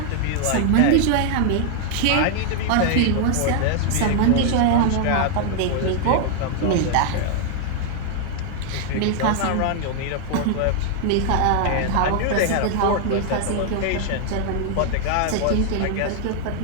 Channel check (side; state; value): both; different; correlation 0.00